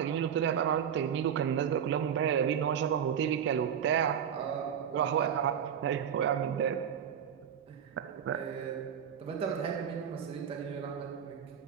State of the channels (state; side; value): quieter; left; 8.4 dB